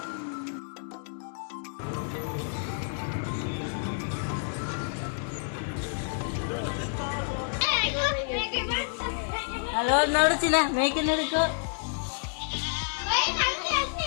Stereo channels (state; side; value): silent; right; 58 dB below the other